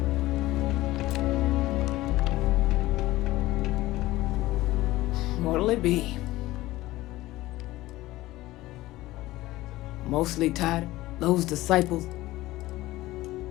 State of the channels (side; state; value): right; quieter; 17.5 dB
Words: What'll it be? Mostly tied those disciples.